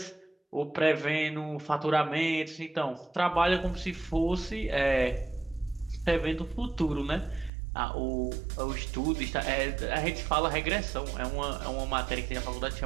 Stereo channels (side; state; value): left; drops out; at 7.5 s